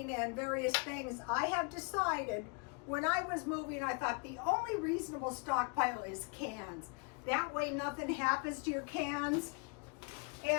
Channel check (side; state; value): right; quieter; 34.5 dB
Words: and various things, I have decided, when I was moving, I thought the only reasonable stockpile is cans. That way nothing happens to your cans.